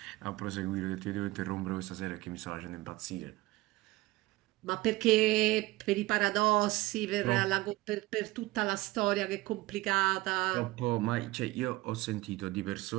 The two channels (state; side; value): quieter; left; 19.6 dB